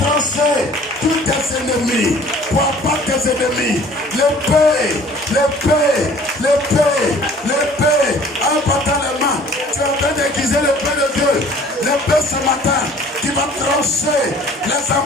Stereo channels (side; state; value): both; normal; correlation 0.51